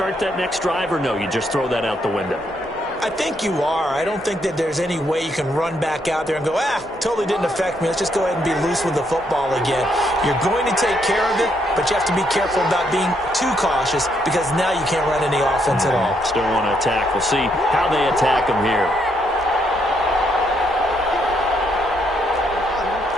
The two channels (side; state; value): both; normal; correlation 0.74